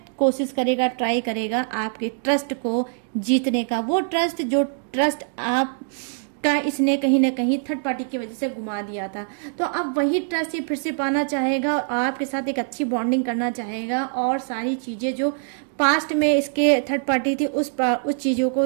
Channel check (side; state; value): left; silent; digital silence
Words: कोशिश करेगा, ट्राई करेगा आपके ट्रस्ट को जीतने का। वो ट्रस्ट जो ट्रस्ट आप का इसने कहीं ना कहीं थर्ड पार्टी की वजह से घुमा दिया था, तो अब वही ट्रस्ट ये फिर से पाना चाहेगा और आपके साथ एक अच्छी बॉन्डिंग करना चाहेगा और सारी चीज़ें जो पास्ट में इसके थर्ड पार्टी थी उस चीज़ों को